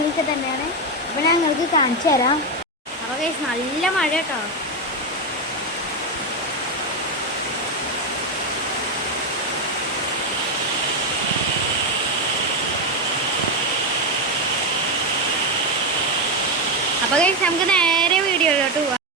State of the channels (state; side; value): normal; both; correlation 0.08